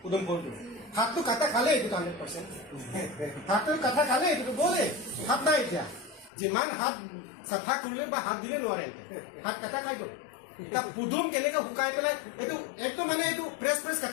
উদম ফুলটো হাতটো কাটা খালে এইটো 100% হাতটো কাটা খালে এইটো বলে হাত নাই এতিয়া যিমান হাত চাফা কৰিলে বা হাত দিলে নোৱাৰে হাত কাটা খাই গ'ল এটা পুদুম কেনেকৈ শুকাই পেলাই এইটো একদম মানে এইটো ফ্ৰেছ ফ্ৰেছ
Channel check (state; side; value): drops out; right; at 6.3 s